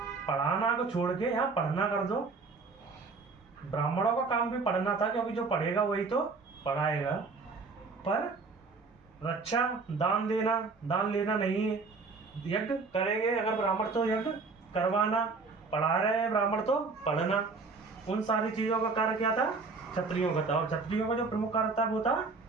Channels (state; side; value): quieter; left; 4.2 dB